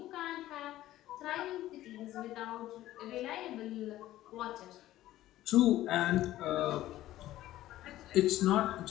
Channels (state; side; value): quieter; right; 14.7 dB